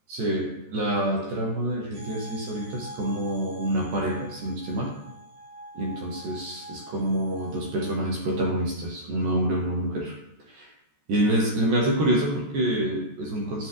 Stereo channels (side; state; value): left; late; 14 ms